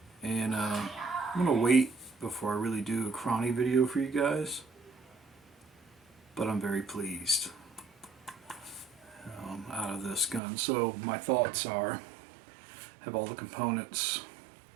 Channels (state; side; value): drops out; left; at 10.4 s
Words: And I'm going to wait before I really do a crawny video for you guys. But I'm very pleased out of this gun. So my thoughts are, have all the components,